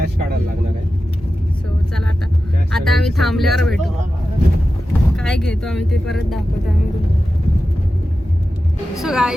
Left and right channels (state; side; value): normal; both; correlation 0.93